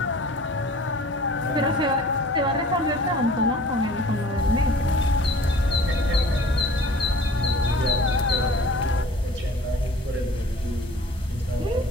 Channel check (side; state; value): both; normal; correlation 0.47